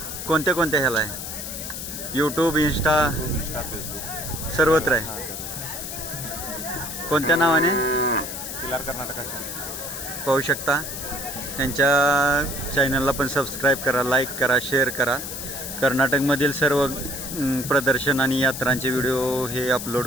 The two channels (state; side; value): noise; left; hiss, 7 dB below the sound